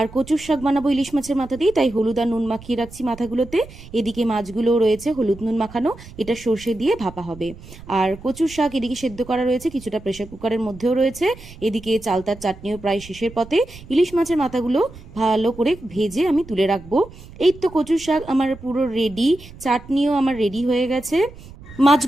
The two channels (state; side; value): noise; right; rumble, 18 dB below the sound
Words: কচুর শাক বানাবো ইলিশ মাছের মাথা দিয়ে, তাই হলুদ আর নুন মাখিয়ে রাখছি মাথাগুলোতে। এদিকে মাছগুলোও রয়েছে হলুদ নুন মাখানো, এটা সর্ষে দিয়ে ভাপা হবে। আর কচুর শাক এদিকে সেদ্ধ করা রয়েছে, কিছুটা প্রেসার কুকারের মধ্যেও রয়েছে। এদিকে চালতার চাটনিও প্রায় শেষের পথে। ইলিশ মাছের মাথাগুলো ভালো করে ভেজে আমি তুলে রাখবো। এই তো কচুর শাক আমার পুরো রেডি, চাটনিও আমার রেডি হয়ে গেছে।